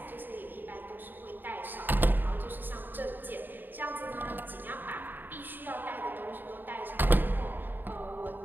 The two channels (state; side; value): late; left; 0.092 ms